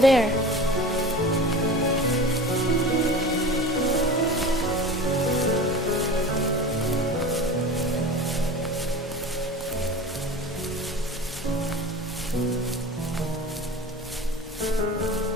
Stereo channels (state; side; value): normal; both; correlation 0.35